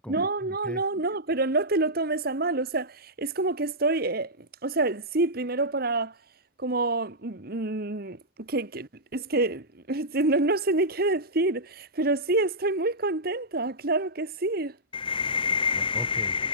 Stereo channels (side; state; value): both; normal; correlation -0.11